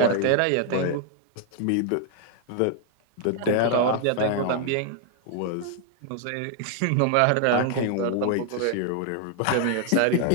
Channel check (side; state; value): both; different; correlation 0.00